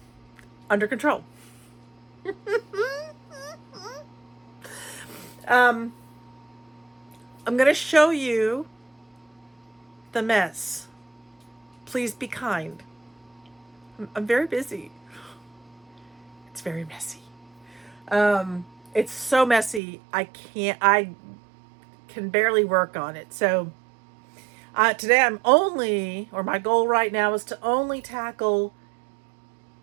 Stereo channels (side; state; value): left; drops out; at 19.8 s